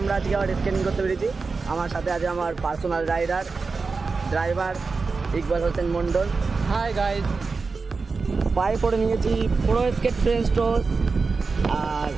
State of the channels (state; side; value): quieter; left; 4.4 dB